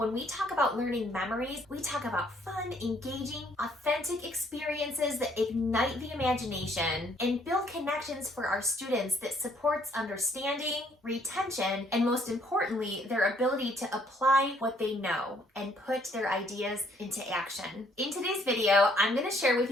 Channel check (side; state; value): both; normal; correlation 0.65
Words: we talk about learning memories, we talk about fun, engaging, authentic experiences that ignite the imagination and build connections for our students that supports understanding, retention, and most importantly, their ability to apply what they know and put their ideas into action. In today's video, I'm going to share with